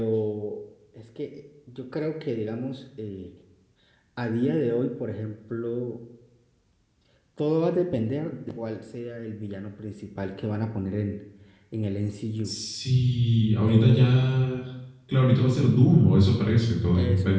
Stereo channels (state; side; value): identical; both; correlation 1.00